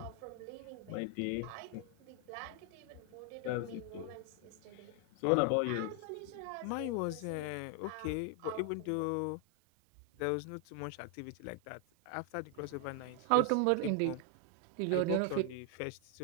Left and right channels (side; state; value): both; different; correlation 0.00